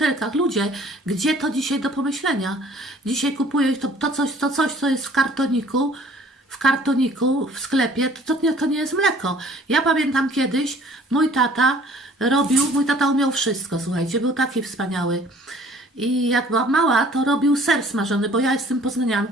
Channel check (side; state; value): both; normal; correlation 0.54